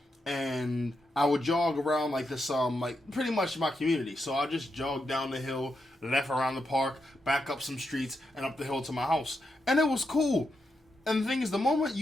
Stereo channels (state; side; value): normal; both; correlation 0.84